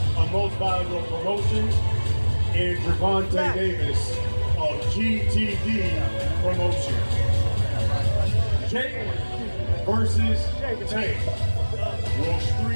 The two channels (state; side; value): inverted; both; correlation -1.00